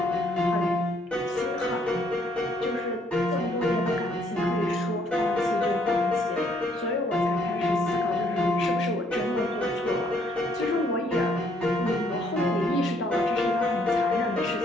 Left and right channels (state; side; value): normal; both; correlation 0.67